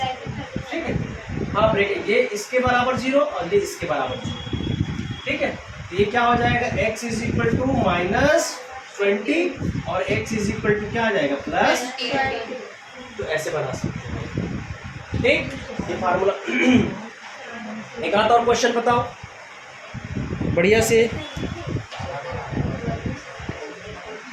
ठीक है। हाँ ब्रेक, ये इसके बराबर 0 और ये इसके बराबर 0, ठीक है। तो ये क्या हो जाएगा, x = -20 और x = क्या आ जाएगा +20। तो ऐसे बना सकते हैं, ठीक। ये फार्मूला। एक आध और क्वेश्चन बताओ बढ़िया से।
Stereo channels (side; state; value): both; identical; correlation 1.00